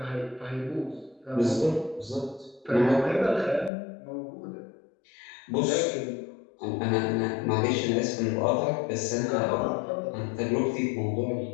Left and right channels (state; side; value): drops out; right; at 3.7 s